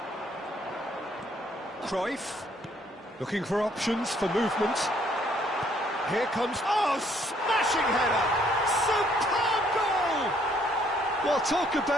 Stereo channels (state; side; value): normal; both; correlation 0.66